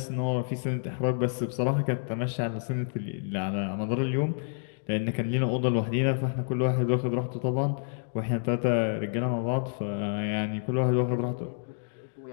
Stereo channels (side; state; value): right; silent; digital silence